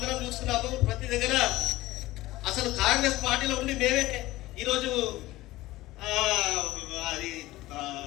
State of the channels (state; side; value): quieter; right; 17.7 dB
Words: చూస్తున్నాము. ప్రతి దగ్గర అసలు కాంగ్రెస్ పార్టీలో ఉండి మేమే ఈరోజు అది